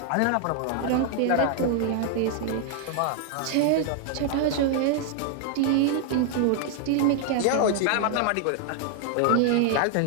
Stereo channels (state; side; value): different; both; correlation 0.00